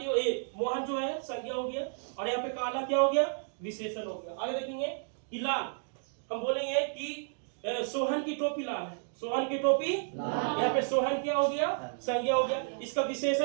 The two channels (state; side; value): silent; left; digital silence